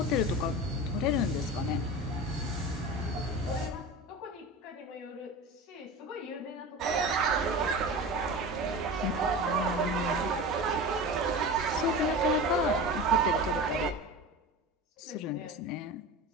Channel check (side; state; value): both; normal; correlation 0.30